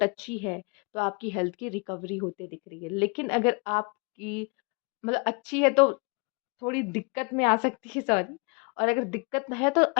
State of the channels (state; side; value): quieter; right; 31.7 dB